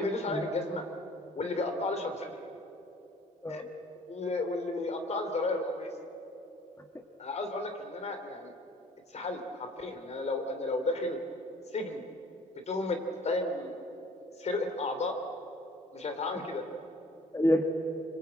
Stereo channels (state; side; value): normal; both; correlation 0.54